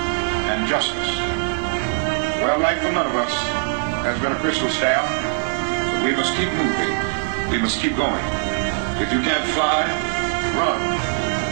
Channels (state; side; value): silent; left; digital silence